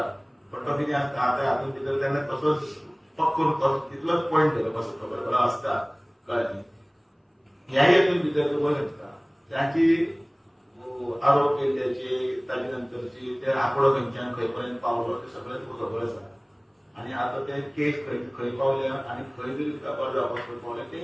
पण तो कितें आसता आतां हातूंत भितर तेन्ना तसोच पक्को तितलोच पॉयंट केलो कसो खबर आसता कळ्ळें. ह्या हेतून भितर तो पळय शकता त्याची आरोप केल्ल्याची ताजे नंतरची ते आंकडो खंयच्यान खंय पर्यंत पावलो ते सगळें तुका खबर आसा. आणि आता ते केस खंय पावल्या आणि खंय जरी तपास जावपाक पावल्या तेय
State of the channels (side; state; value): both; identical; correlation 1.00